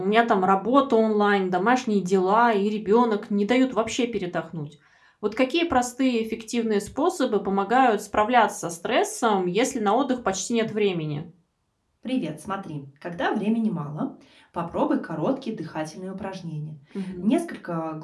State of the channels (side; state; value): both; identical; correlation 1.00